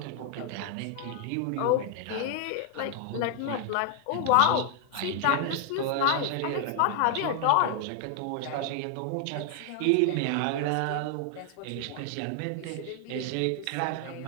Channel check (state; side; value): different; both; correlation 0.00